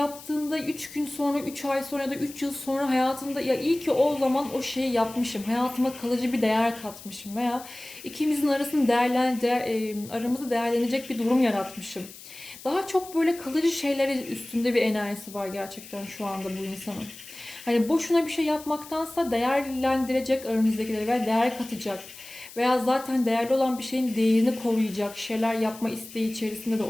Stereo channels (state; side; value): noise; left; hiss, 17 dB below the sound